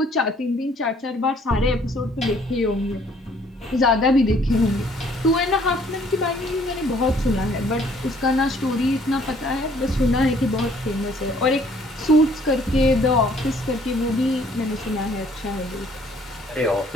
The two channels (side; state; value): both; normal; correlation 0.60